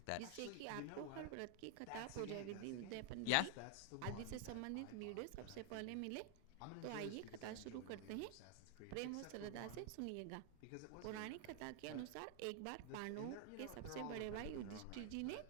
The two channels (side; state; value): both; different; correlation 0.00